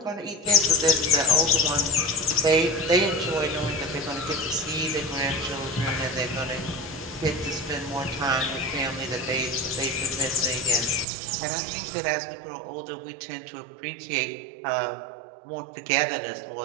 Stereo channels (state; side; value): drops out; left; at 11.1 s